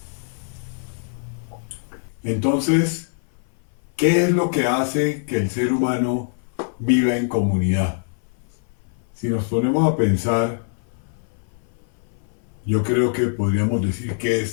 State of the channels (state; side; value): silent; right; 58 dB below the other